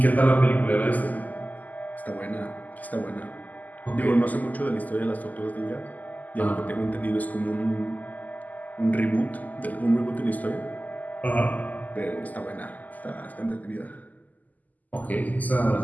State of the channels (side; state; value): right; late; 0.080 ms